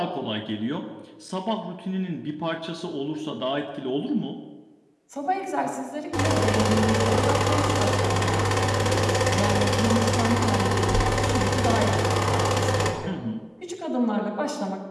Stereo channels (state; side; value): identical; both; correlation 1.00